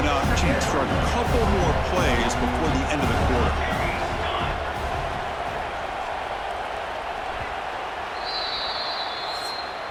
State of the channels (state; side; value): identical; both; correlation 1.00